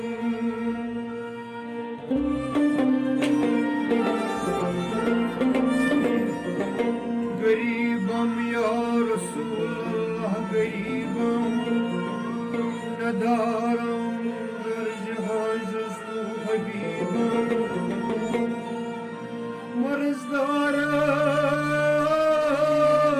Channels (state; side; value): identical; both; correlation 1.00